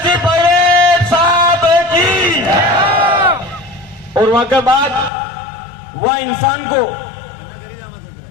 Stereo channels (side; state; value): right; drops out; at 5.1 s